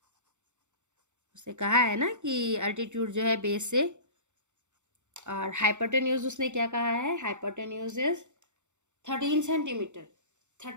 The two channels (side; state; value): left; late; 0.84 ms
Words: उसने कहा है ना कि अल्टीट्यूड जो है बेस से, और हाइपोटेन्यूज उसने क्या कहा है, हाइपोटेन्यूज इज 13 सेंटीमीटर।